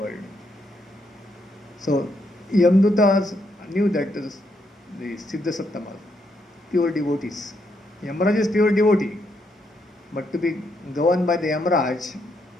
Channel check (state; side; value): normal; both; correlation 0.77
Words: So, Yamdutas knew that the Siddha Sattama, pure devotees. Yamraj is pure devotee, but to be governed by the Yamraj